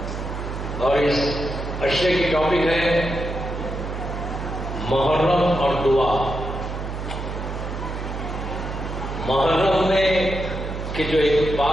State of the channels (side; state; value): right; noise; hum, 6 dB below the sound